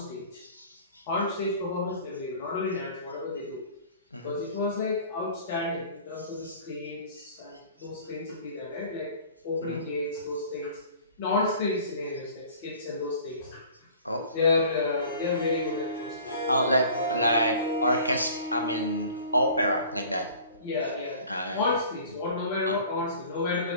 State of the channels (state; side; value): inverted; both; correlation -0.45